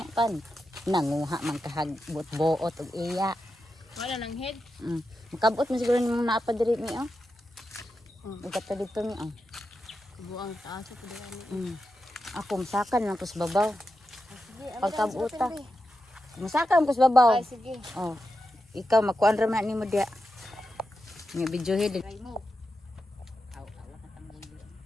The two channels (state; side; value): normal; both; correlation 0.89